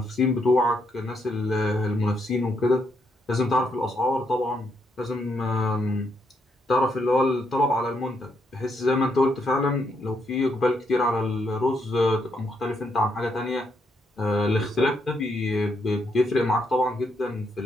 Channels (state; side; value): normal; both; correlation 0.77